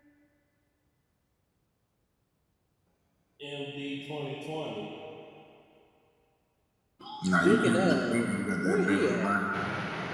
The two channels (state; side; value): identical; both; correlation 1.00